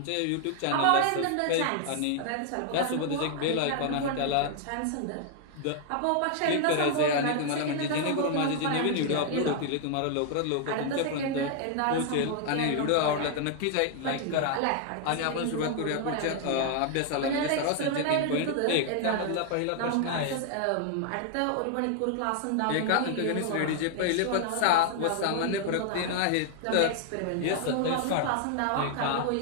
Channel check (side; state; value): both; different; correlation 0.00